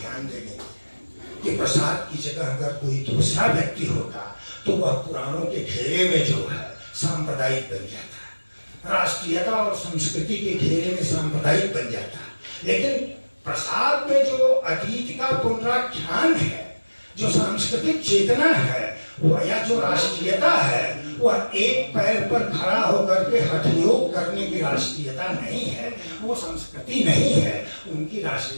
देने कि प्रसाद की जगह अगर कोई दूसरा व्यक्ति होता तो वह पुराणों के घेरे में जो है सांप्रदायिक बन जाता, राष्ट्रीयता और संस्कृति के घेरे में सांप्रदायिक बन जाता। लेकिन प्रसाद में जो अतीत का पुनराख्यान है, जो सांस्कृतिक चेतना है, वह या जो राष्ट्रीयता है, वह एक पैर पर खड़ा होकर के हठयोग करने की राष्ट्रीयता नहीं है, वो संस्कृति नहीं है। उनकी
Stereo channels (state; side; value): inverted; both; correlation -1.00